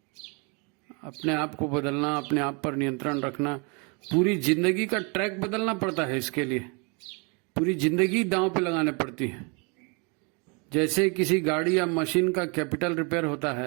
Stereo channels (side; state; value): left; quieter; 32.8 dB